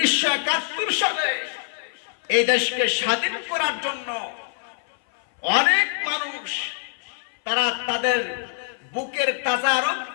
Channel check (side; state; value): right; silent; 58 dB below the other